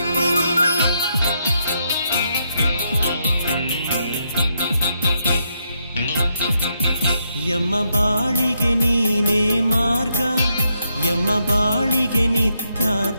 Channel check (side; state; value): both; inverted; correlation -0.79